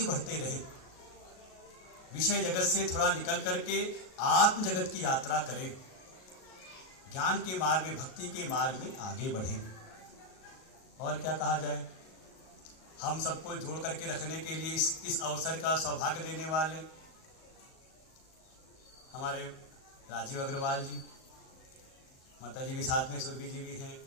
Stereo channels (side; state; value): right; late; 38 ms